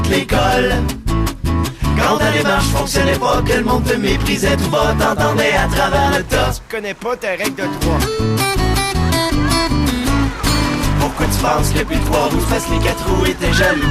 l'école. Quand ta démarche fonctionnait pas, que le monde te méprisait tout bas, t'entendais à travers le tas. Tu connais pas ta règle de 3. Pourquoi tu penses que plus de 3 roues fassent les 4 roues et t'es jaloux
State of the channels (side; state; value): both; identical; correlation 1.00